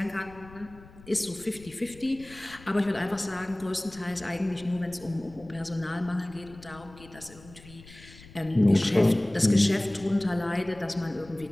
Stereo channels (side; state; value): left; noise; rumble, 20 dB below the sound